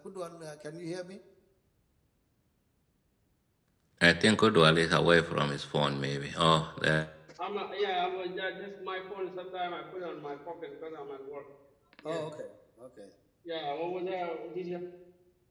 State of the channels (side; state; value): both; identical; correlation 1.00